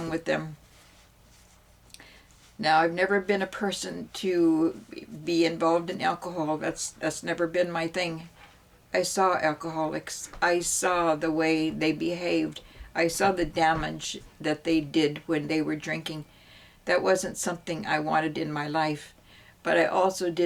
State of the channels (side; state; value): both; identical; correlation 1.00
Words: with them. Now, I've never been a person to be involved in alcohol. That's never been my thing. I saw alcoholics. I saw the way they behaved. I saw the damage that they did when they were drinking. That wasn't something I wanted in my life. But I also